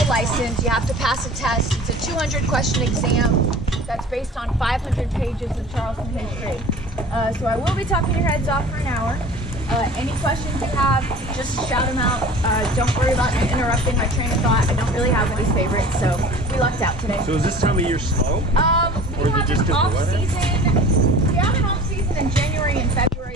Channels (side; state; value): both; normal; correlation 0.42